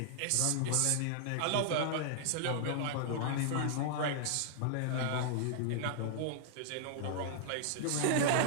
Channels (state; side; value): different; both; correlation -0.01